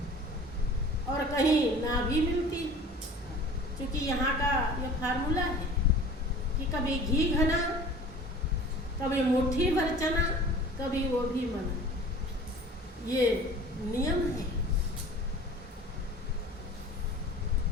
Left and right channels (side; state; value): both; normal; correlation 0.43